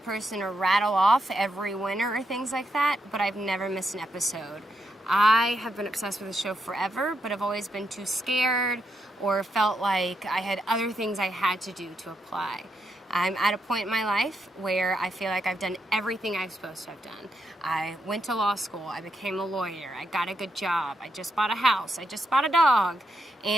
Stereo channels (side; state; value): both; normal; correlation 0.81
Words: to rattle off every winner or things like that, but I've never missed an episode. I have been obsessed with the show forever, but I've always been too scared or felt like I had other things I had to do to apply. I'm at a point in my life where I feel like I've done everything I'm supposed to have done. I went to law school, I became a lawyer, I got a good job, I just bought a house, I just bought a dog,